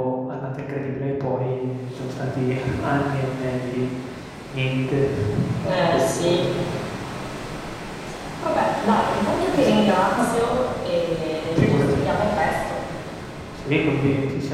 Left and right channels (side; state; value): both; identical; correlation 1.00